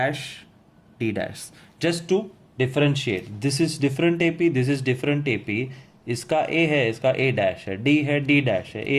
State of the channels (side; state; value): both; identical; correlation 1.00